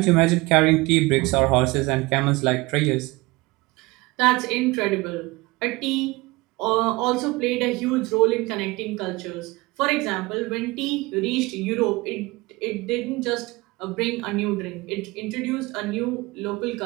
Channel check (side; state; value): left; quieter; 22.9 dB